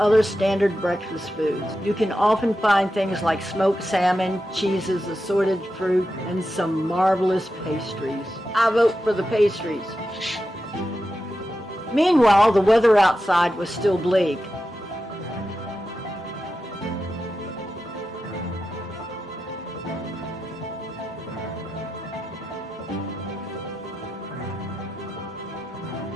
standard breakfast foods. You can often find things like smoked salmon, cheeses, assorted fruit, and some marvelous pastries. I vote for the pastries. Meanwhile, the weather outside was still bleak.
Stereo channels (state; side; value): normal; both; correlation 0.90